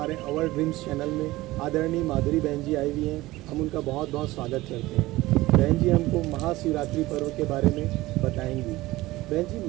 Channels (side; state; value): left; quieter; 18.5 dB